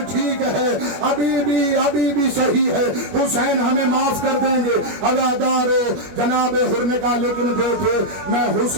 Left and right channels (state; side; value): late; left; 21 ms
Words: ठीक है, अभी भी सही है, हुसैन हमें माफ कर देंगे। अज़ादारों, जनाब हुर ने कहा, लेकिन बेटे मैं